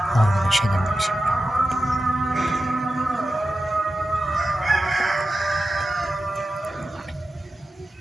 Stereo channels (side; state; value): both; normal; correlation 0.93